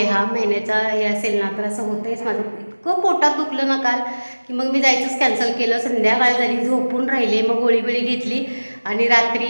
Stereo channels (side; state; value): both; inverted; correlation -1.00